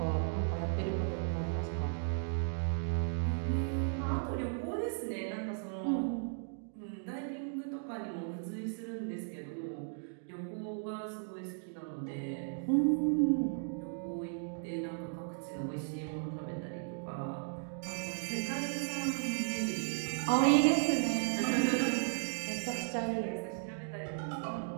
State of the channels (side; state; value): left; silent; digital silence